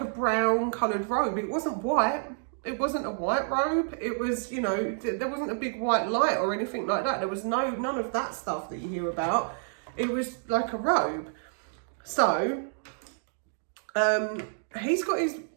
brown coloured robe. It wasn't white. It wasn't a white robe. It was, you know, there wasn't a big white light or anything like that. There was none of that stuff that you hear about. It was like a robe. So, he's got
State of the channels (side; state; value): left; silent; digital silence